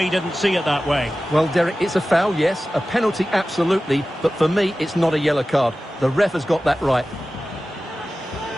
didn't see it that way. Well, Derek, it's a foul, yes. A penalty, absolutely. But for me, it's not a yellow card. The ref has got that right.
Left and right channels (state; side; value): normal; both; correlation 0.95